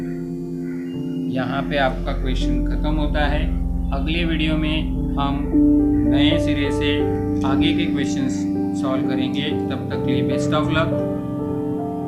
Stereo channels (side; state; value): both; identical; correlation 1.00